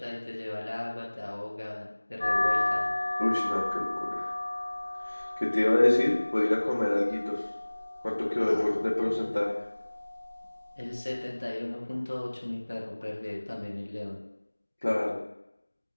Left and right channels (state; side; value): inverted; both; correlation -1.00